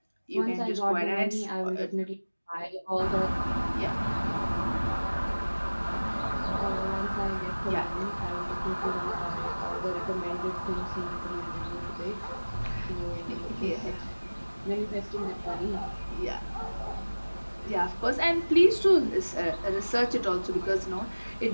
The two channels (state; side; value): inverted; both; correlation -1.00